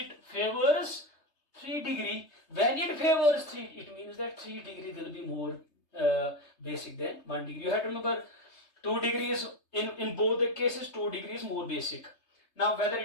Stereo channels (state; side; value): late; right; 3.3 ms